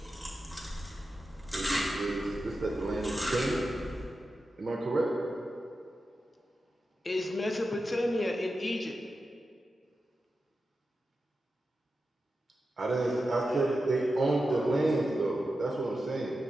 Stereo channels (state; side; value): normal; both; correlation 0.91